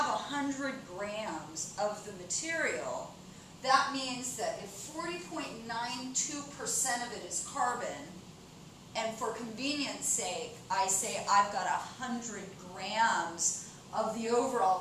100 grams of the material, that means that if 40.92% of it is carbon, and for convenience sake, I say I've got 100 grams of the overall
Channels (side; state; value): both; identical; correlation 1.00